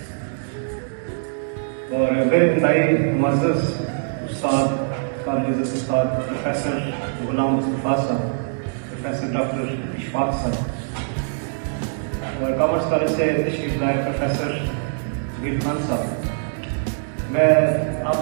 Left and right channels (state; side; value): silent; left; digital silence